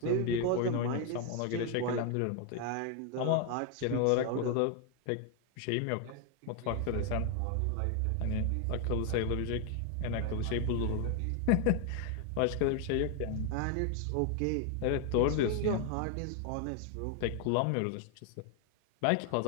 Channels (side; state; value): both; different; correlation 0.01